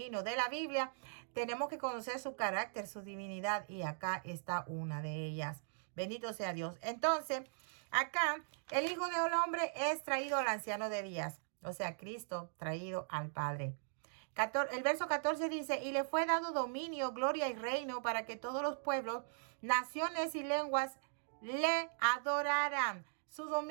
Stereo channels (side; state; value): left; silent; digital silence